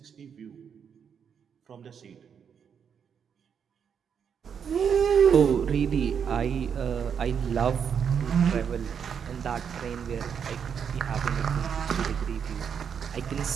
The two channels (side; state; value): left; quieter; 7.3 dB